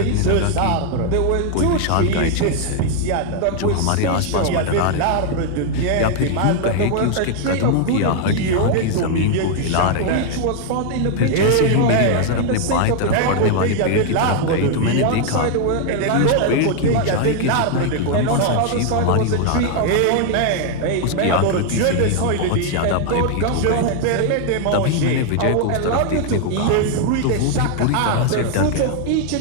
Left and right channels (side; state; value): both; different; correlation 0.00